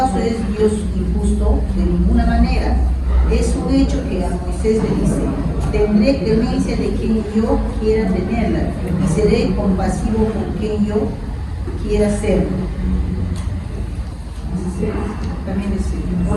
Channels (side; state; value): both; identical; correlation 1.00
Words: es Dios injusto? De ninguna manera. Es un hecho que a Moisés le dice: tendré clemencia de quien yo quiera tenerla, y seré compasivo con quien yo quiera serlo. También dice: